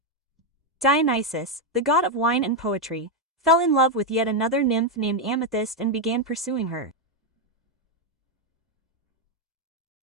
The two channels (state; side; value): normal; both; correlation 0.04